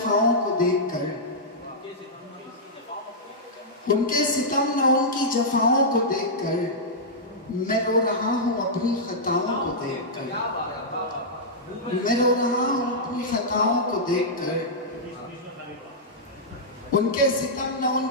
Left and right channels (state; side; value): normal; both; correlation -0.10